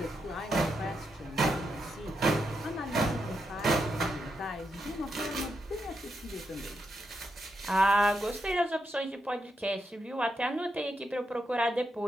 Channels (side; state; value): both; normal; correlation 0.83